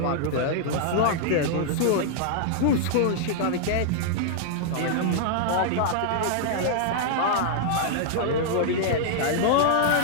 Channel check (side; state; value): both; different; correlation -0.01